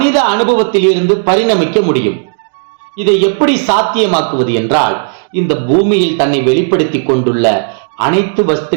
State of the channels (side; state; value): left; silent; digital silence